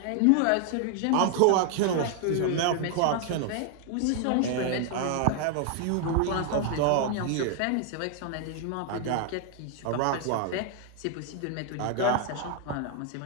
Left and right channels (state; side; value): different; both; correlation 0.00